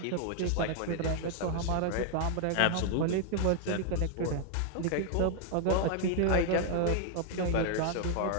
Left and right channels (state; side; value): different; both; correlation 0.00